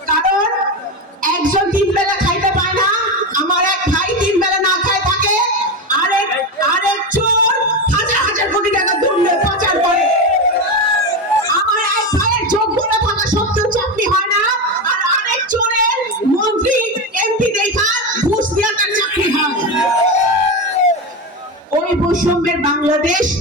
কারণ একজন ৩ বেলা খাইতে পায় না, আমার এক ভাই ৩ বেলা না খায় থাকে, আরেক চোর হাজার হাজার কোটি টাকা দুর্নীতি পাচার করে। আমার এক ভাইয়ের যোগ্যতা থাকা সত্ত্বেও চাকরি হয় না, আর আরেক চোরের মন্ত্রী এমপি দেখা ঘুষ দিয়ে তার চাকরি হয়। ওই বৈষম্যের বাংলাদেশ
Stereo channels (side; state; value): both; normal; correlation 0.17